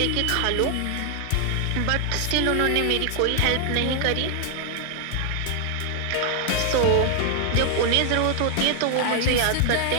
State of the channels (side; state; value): both; different; correlation 0.00